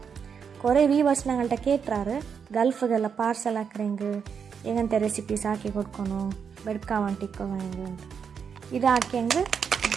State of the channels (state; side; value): quieter; left; 6.7 dB